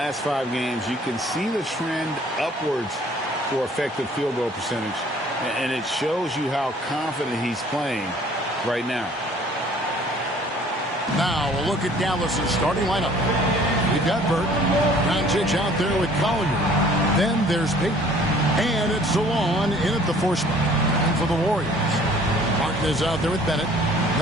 5 games, you can see the trend upwards for effective field goal percentage, and it shows you how confident he's playing right now. Now we'll look at Dallas's starting lineup. We've got Burt, Doncic out there with Collier. Then there's Payton, and it's Zalon in at the 4 spot. And for the Warriors, Martin is out there with Bennett.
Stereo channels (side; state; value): both; normal; correlation 0.54